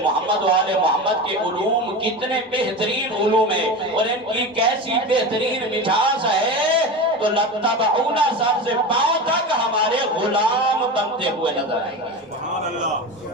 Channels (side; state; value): both; normal; correlation 0.26